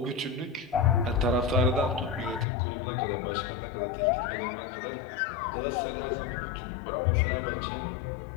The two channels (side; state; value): right; drops out; at 2.5 s